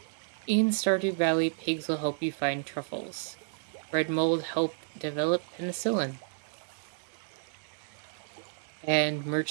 In Stardew Valley, pigs will help you find truffles. Bread mold helped develop penicillin. And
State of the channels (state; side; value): silent; left; digital silence